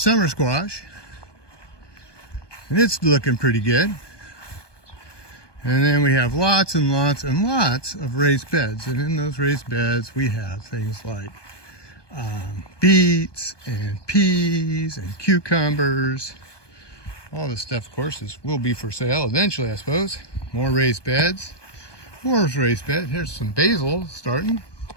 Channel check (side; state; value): right; late; 1.2 ms